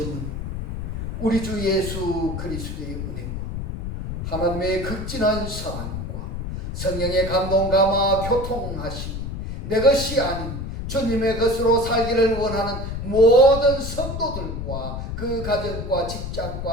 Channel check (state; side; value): noise; left; rumble, 5 dB below the sound